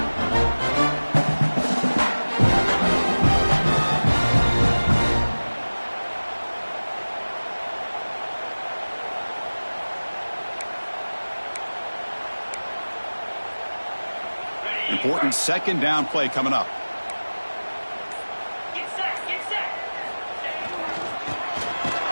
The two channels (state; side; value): inverted; both; correlation -1.00